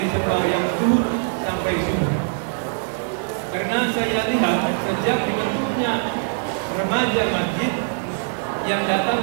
sembahyang zuhur sampai subuh. Karena saya lihat sejak dibentuknya remaja masjid yang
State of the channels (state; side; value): silent; left; digital silence